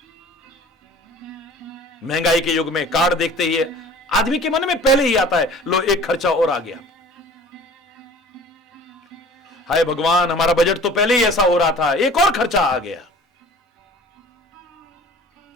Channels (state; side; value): normal; both; correlation 0.46